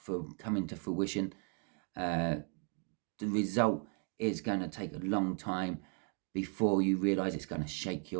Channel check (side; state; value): left; quieter; 38.1 dB